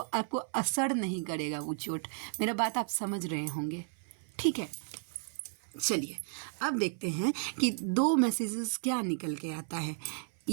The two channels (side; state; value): left; silent; 55 dB below the other